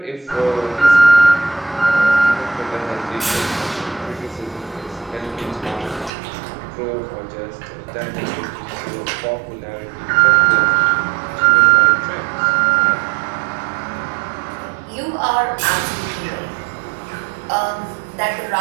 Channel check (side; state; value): left; drops out; at 6.1 s